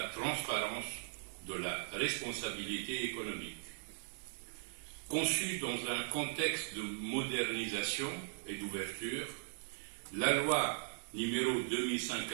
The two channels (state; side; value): silent; left; digital silence